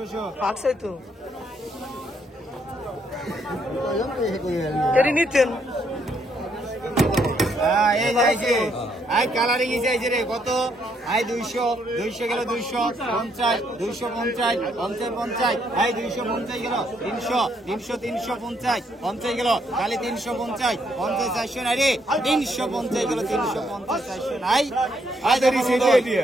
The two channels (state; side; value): normal; both; correlation 0.72